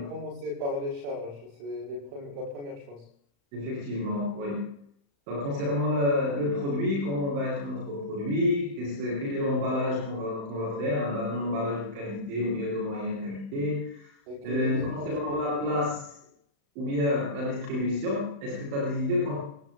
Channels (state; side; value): late; left; 35 ms